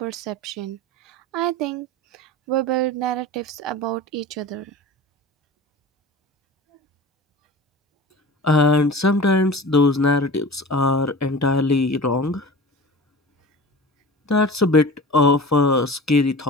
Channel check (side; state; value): both; normal; correlation 0.36